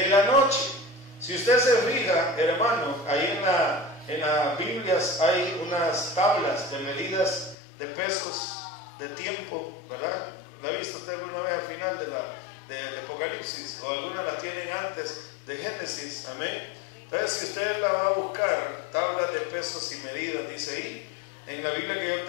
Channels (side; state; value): right; drops out; at 7.6 s